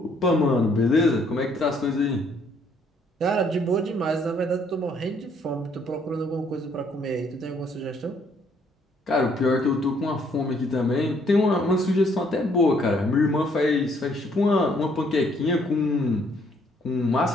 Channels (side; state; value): both; normal; correlation 0.66